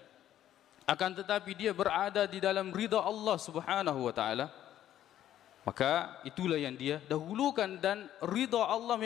akan tetapi dia berada di dalam ridha Allah Subhanahu wa taala, maka itulah yang dia dahulukan, dan ridha Allah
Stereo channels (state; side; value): quieter; right; 11.8 dB